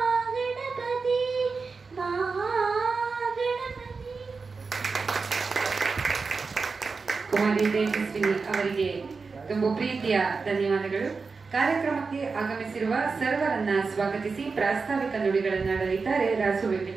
ಮಹಾಗಣಪತಿ. ಕುಮಾರಿ ತೇಜಸ್ವಿನಿ ಅವರಿಗೆ ತುಂಬ ಪ್ರೀತಿಯ ಧನ್ಯವಾದಗಳು. ಕಾರ್ಯಕ್ರಮಕ್ಕೆ ಆಗಮಿಸಿರುವ ಸರ್ವರನ್ನ ಸ್ವಾಗತಿಸಿ ಪ್ರಾಸ್ತಾವಿಕ ನುಡಿಗಳನ್ನಾಡಲಿದ್ದಾರೆ ರಾಸು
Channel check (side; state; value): left; quieter; 4.6 dB